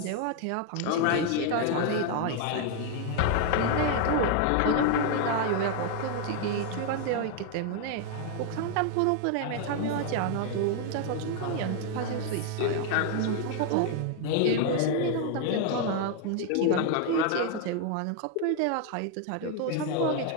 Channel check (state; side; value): different; both; correlation 0.00